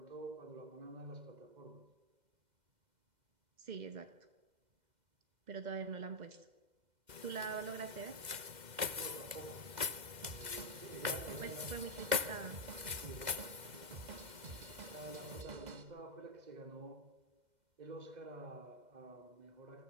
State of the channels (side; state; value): left; late; 2.0 ms